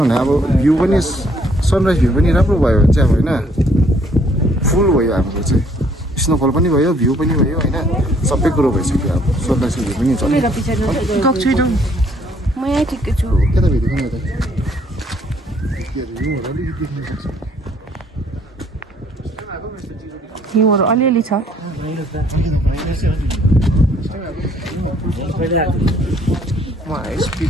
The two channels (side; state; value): both; normal; correlation 0.64